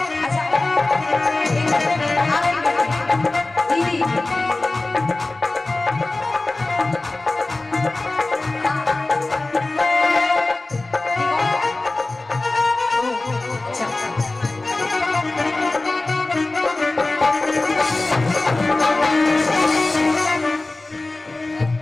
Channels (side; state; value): right; quieter; 3.1 dB